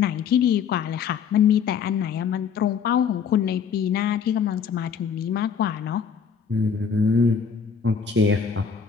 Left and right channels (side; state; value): right; quieter; 6.8 dB